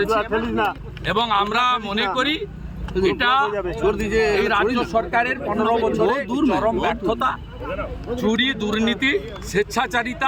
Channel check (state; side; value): identical; both; correlation 1.00